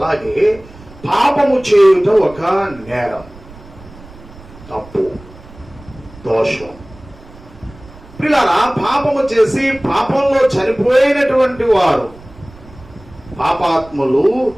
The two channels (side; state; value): right; noise; rumble, 21 dB below the sound